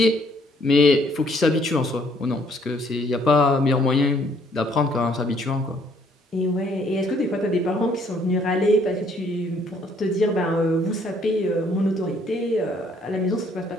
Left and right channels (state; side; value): normal; both; correlation 0.65